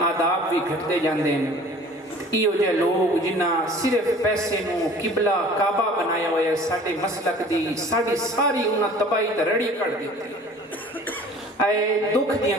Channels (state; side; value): normal; both; correlation 0.47